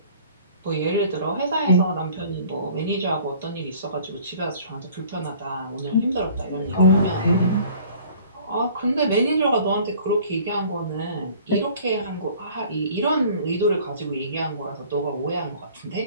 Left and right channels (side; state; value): both; inverted; correlation -0.50